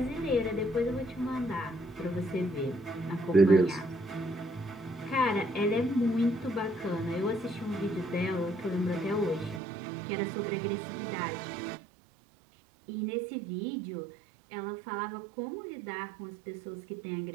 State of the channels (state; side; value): drops out; left; at 9.6 s